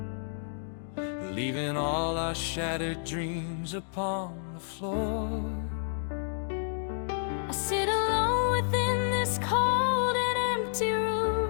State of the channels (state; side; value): silent; right; digital silence